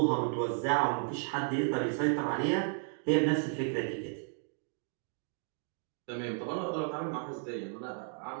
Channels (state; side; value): silent; left; 55 dB below the other